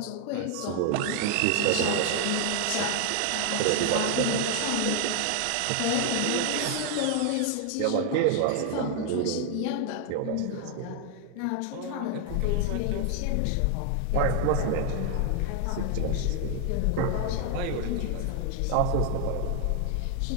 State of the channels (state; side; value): different; both; correlation 0.00